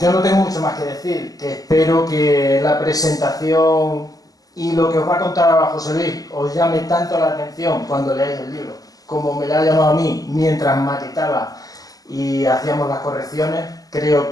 no tengo mucho más que decir, que espero que la presentación y lo que os va a contar ahora José Luis os llame tanto la atención cuando leáis el libro, como me lo ha llamado a mí mientras maquetaba y hacíamos las correcciones. Creo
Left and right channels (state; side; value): late; right; 0.17 ms